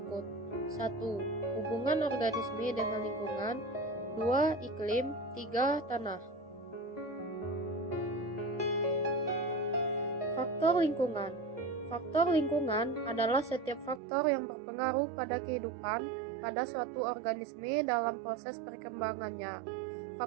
1. Hubungan organisme dengan lingkungan. 2. Iklim. 3. Tanah. Faktor lingkungan. Faktor lingkungan adalah setiap faktor yang berpengaruh pada kehidupan pada suatu organisme dalam proses perkembangannya.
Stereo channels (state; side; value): drops out; left; at 14.0 s